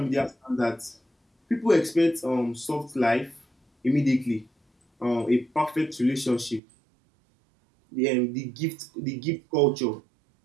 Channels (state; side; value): drops out; left; at 6.6 s